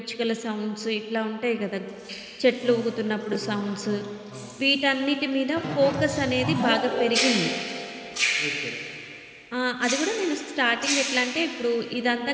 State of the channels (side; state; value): both; identical; correlation 1.00